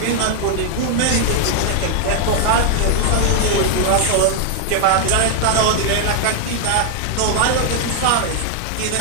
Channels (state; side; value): different; both; correlation 0.00